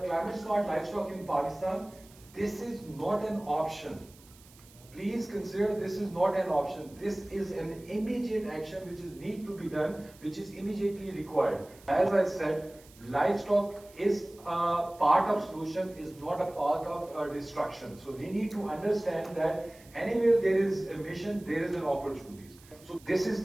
Climate smart livestock in Pakistan, this is not an option. Please consider this is not an option. This is an immediate action which is need to be done, which is immediately required. As I said, livestock is a part of solution, is not a part of destruction. So we need to understand that anywhere there is a mission, there is an opportunity. So this is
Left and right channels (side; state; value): right; noise; hiss, 24 dB below the sound